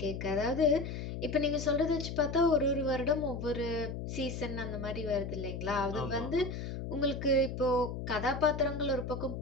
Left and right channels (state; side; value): noise; left; hum, 6 dB below the sound